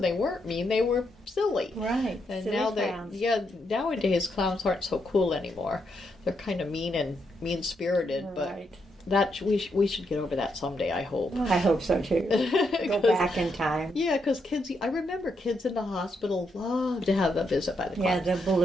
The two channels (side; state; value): both; normal; correlation 0.79